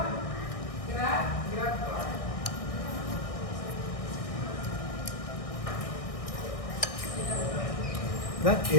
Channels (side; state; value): right; late; 1.6 ms